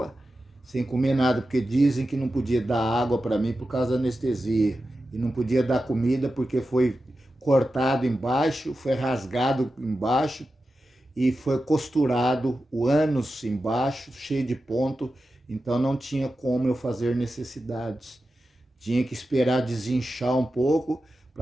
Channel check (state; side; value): normal; both; correlation 0.92